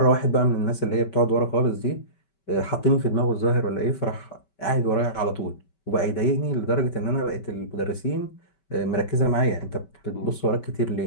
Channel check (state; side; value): late; right; 5.2 ms